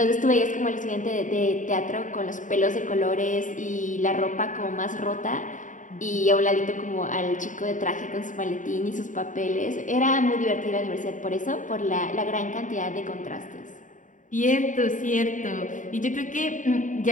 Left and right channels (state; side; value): late; right; 0.37 ms